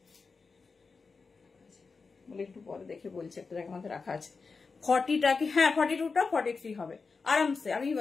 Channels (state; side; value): quieter; right; 4.6 dB